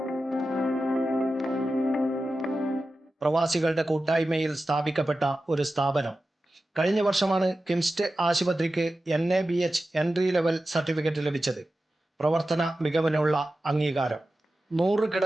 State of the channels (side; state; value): both; normal; correlation 0.93